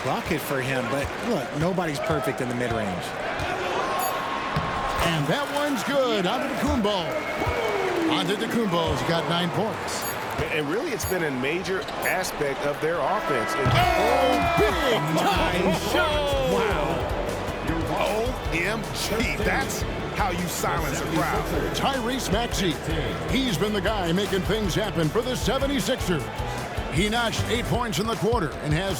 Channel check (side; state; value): both; identical; correlation 1.00